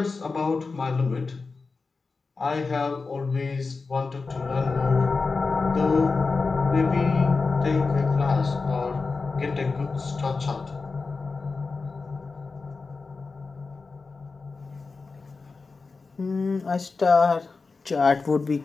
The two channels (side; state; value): right; quieter; 4.2 dB